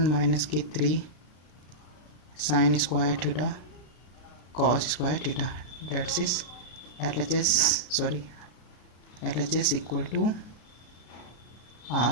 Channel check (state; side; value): late; right; 33 ms